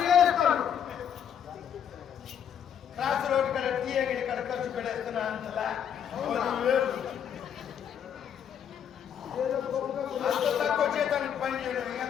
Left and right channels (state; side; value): quieter; right; 8.6 dB